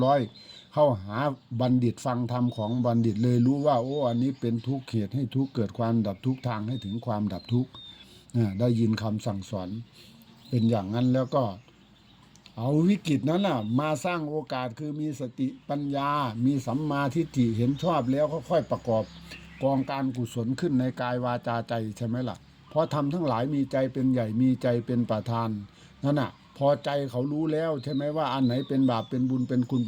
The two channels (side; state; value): both; identical; correlation 1.00